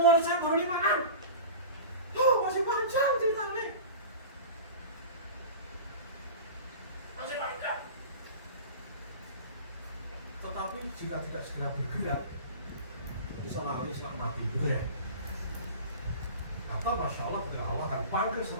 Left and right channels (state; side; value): inverted; both; correlation -0.35